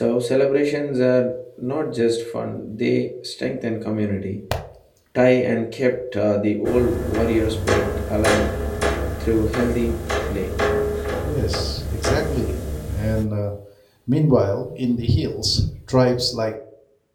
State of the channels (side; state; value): both; identical; correlation 1.00